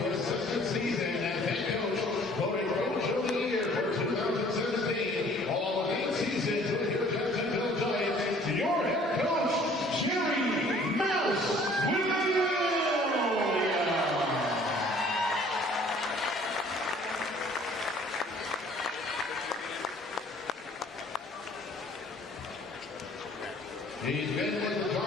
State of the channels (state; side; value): normal; both; correlation 0.55